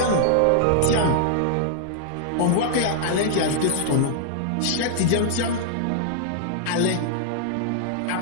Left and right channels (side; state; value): both; different; correlation -0.01